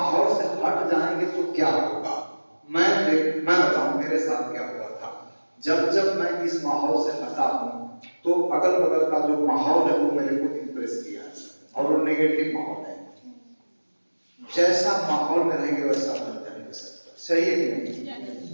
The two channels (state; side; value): inverted; both; correlation -1.00